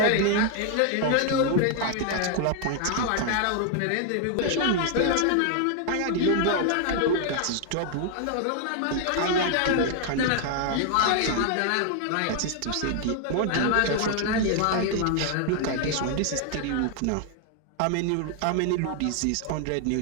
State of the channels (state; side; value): different; both; correlation 0.00